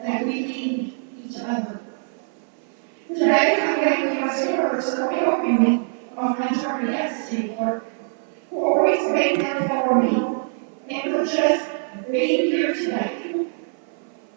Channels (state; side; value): silent; left; 56 dB below the other